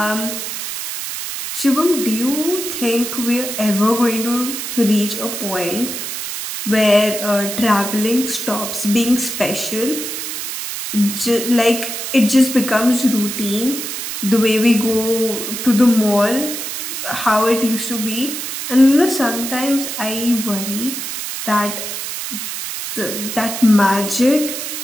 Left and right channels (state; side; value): noise; right; hiss, 5 dB below the sound